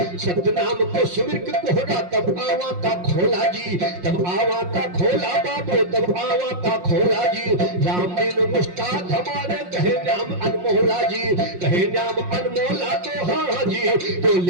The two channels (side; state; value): left; late; 5.6 ms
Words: सत्य नाम को सुमिर के कोहरा तब आवा का खोला जी। तब आवा का खोला बाबू तब आवा का खोला जी। राम दिन मुस्ताद हमारे कहे नाम अनमोला जी। कहे नाम अनमोला तो हाँ जी। तो